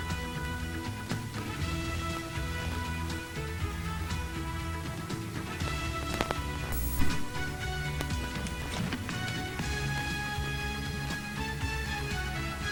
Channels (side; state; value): both; identical; correlation 1.00